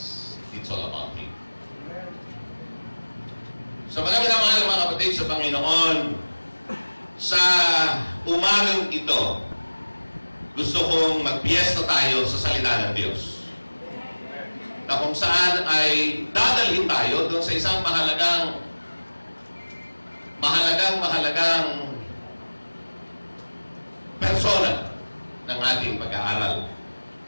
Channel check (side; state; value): both; inverted; correlation -1.00